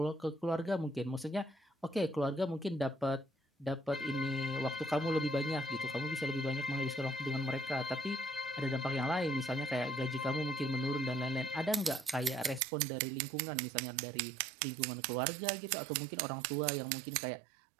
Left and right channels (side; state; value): left; drops out; at 12.6 s